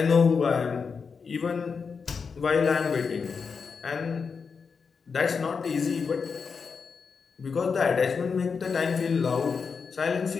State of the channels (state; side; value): quieter; right; 5.5 dB